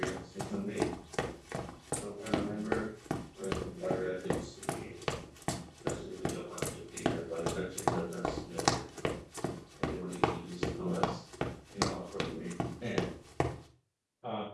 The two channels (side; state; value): both; identical; correlation 1.00